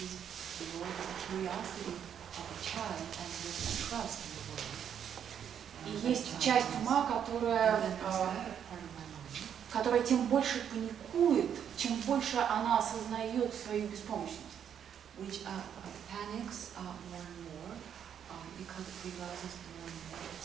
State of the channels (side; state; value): left; quieter; 8.7 dB